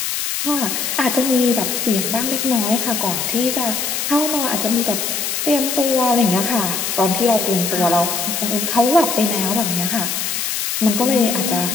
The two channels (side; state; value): left; noise; hiss, 1 dB below the sound